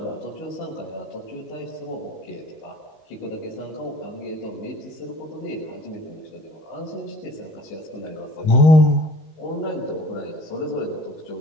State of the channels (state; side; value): late; right; 19 ms